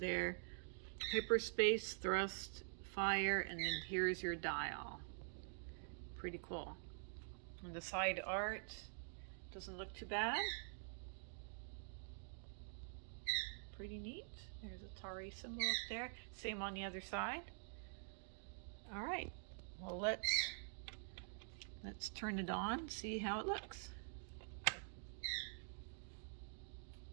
Hyperspace, thrust, fire, and then here's your dial. Pretty cool. And the side art doesn't look too bad. Pretty neat. There's a Atari symbol up there. Same on the other side. All right. Well, let's turn it on, see how it looks.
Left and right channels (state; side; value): silent; left; digital silence